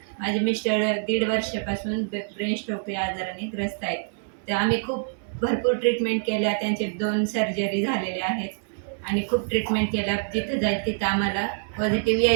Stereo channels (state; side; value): silent; left; digital silence